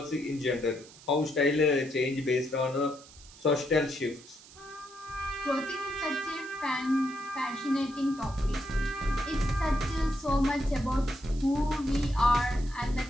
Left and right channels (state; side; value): noise; right; hiss, 21 dB below the sound